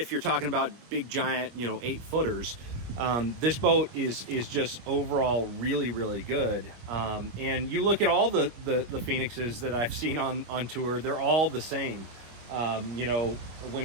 you're talking about big giant, you know, 8 footers, this boat is just overall really, really good. And you look at all the Phoenixes that I've seen on tour, they're all the same. You know,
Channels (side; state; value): left; late; 25 ms